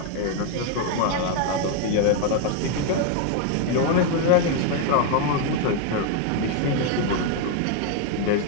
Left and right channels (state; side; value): different; both; correlation 0.01